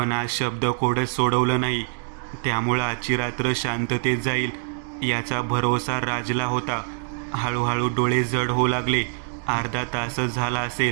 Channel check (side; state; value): left; silent; 57 dB below the other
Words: आज शब्दकोडच सोडवलं नाही. त्यामुळं आजची रात्र शांततेत जाईल याचा भरोसा राजला होता. हळूहळू डोळे जड होऊ लागले. अर्धा तासच झाला